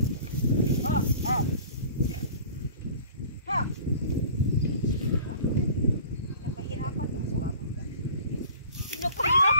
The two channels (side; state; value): both; inverted; correlation -0.47